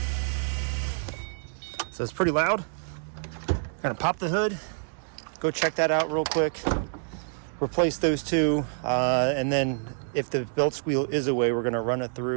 So it's pretty loud. Gonna pop the hood, go check that out real quick, replace those two, and then if the belt squeal is away, we're gonna run it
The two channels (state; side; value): silent; left; digital silence